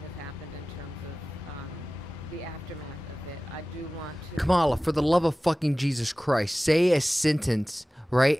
has happened in terms of the aftermath of it. I do want to... Kamala, for the love of fucking Jesus Christ, say a sentence, right?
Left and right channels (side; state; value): both; normal; correlation 0.97